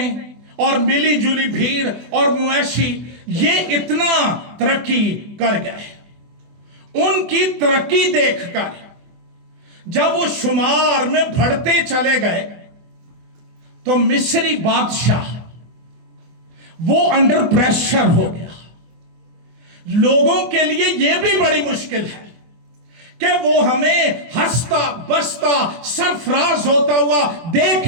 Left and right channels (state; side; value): late; left; 24 ms